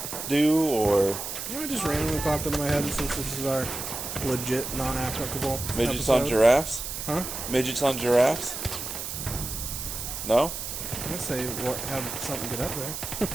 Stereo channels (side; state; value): right; noise; hiss, 6 dB below the sound